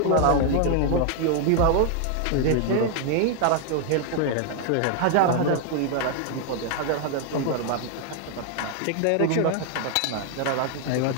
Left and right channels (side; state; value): both; different; correlation 0.00